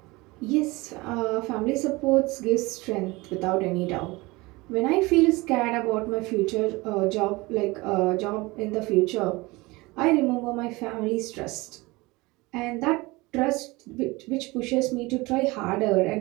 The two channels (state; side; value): quieter; left; 22.8 dB